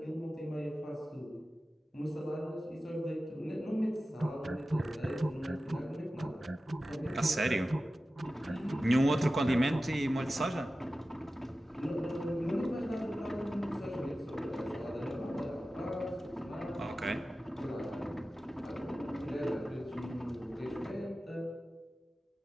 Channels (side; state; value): both; normal; correlation 0.95